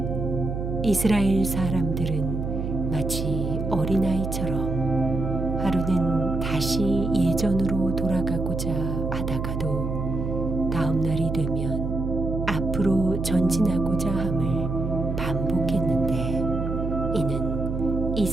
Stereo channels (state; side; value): noise; right; hum, 3 dB below the sound